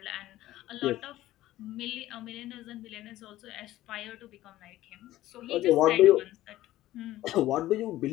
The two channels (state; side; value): quieter; right; 15.2 dB